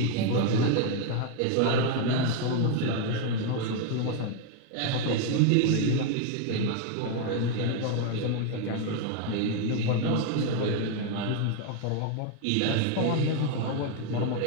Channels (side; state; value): both; different; correlation 0.00